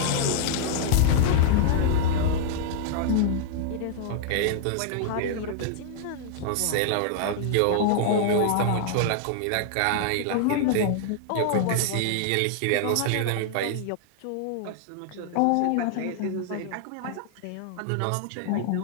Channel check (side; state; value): both; different; correlation -0.01